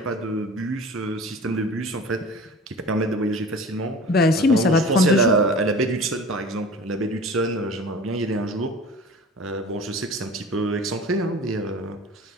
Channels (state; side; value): normal; both; correlation 0.40